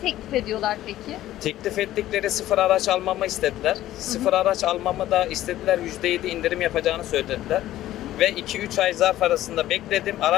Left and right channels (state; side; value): quieter; right; 14.1 dB